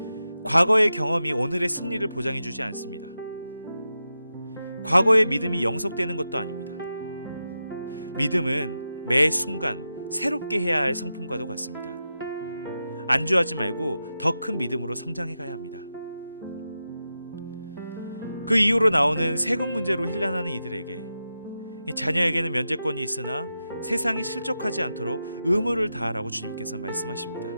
과거의 경험이 오늘의 승리를 보장해주지 않습니다. 과거의 믿음이 영속되는 것도 아닙니다. 믿음은 매 순간 새롭게 해야 할 성품과도 같습니다. 안주하지 말고 더 큰 믿음으로 성장해 가야 합니다. 그 이후로 나오는 세금 문제로 혼란하는 이들에게 자녀에게는 면제권이 있으나 세상에 실족하지 않도록 의무를 다하라고 주님께서 말씀하십니다.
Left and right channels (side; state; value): both; inverted; correlation -0.90